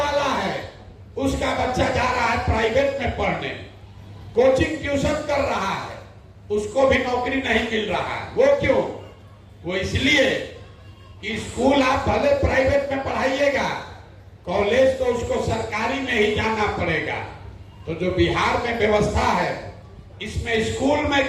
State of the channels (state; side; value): identical; both; correlation 1.00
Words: है उसका बच्चा जा रहा है प्राइवेट में पढ़ने, कोचिंग ट्यूशन कर रहा है, उसको भी नौकरी नहीं मिल रहा है। वो क्यों? वो इसलिए कि स्कूल आप भले प्राइवेट में पढ़ाइएगा, कॉलेज तो उसको सरकारी में ही जाना पड़ेगा। तो जो बिहार में व्यवस्था है, इसमें स्कूल में